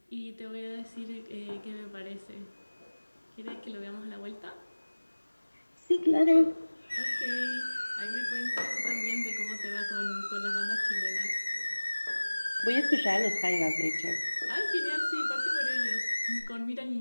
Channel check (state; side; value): inverted; both; correlation -1.00